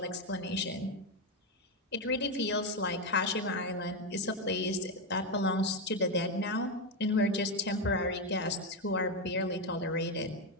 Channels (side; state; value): both; normal; correlation 0.08